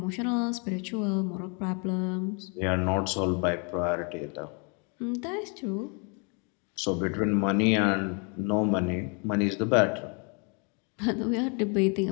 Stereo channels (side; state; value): right; quieter; 35.4 dB